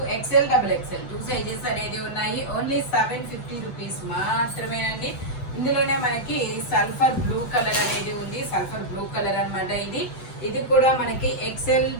XL double XL 2 sizes అనేది ఉన్నాయి. ఓన్లీ 750 రూపీస్ మాత్రమేనండి. ఇందులోనే మనకి సల్ఫర్ బ్లూ కలర్ అనేది ఉంది. సల్ఫర్ బ్లూ కలర్ అనమాట. ఇది కూడా మనకి ఎక్సెల్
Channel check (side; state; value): right; late; 8.0 ms